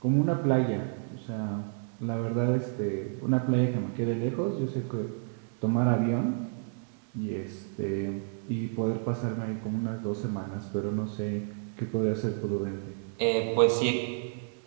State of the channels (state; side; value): silent; left; digital silence